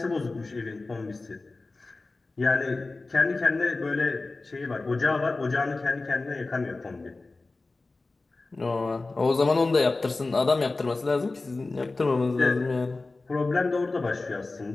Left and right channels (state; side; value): quieter; right; 3.4 dB